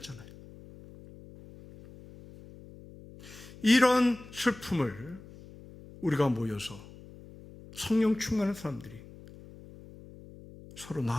이런 슬픔을 우리가 모여서 성령 충만한 사람들이 서로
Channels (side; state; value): left; noise; hum, 19 dB below the sound